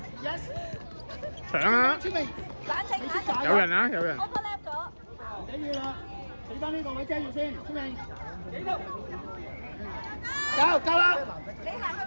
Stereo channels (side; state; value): both; inverted; correlation -1.00